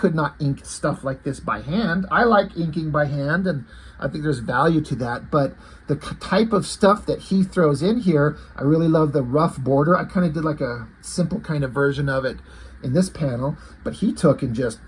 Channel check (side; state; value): both; identical; correlation 1.00